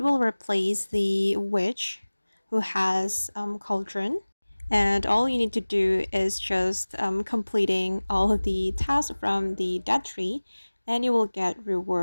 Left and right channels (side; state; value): both; inverted; correlation -1.00